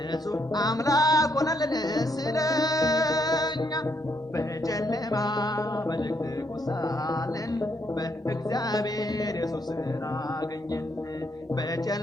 አምላክ ሆነልን ስለኛ። በጨለማ በድቅድቁ ሳለን በእግዚአብሔር ኢየሱስን አገኘን።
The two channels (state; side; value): normal; both; correlation 0.74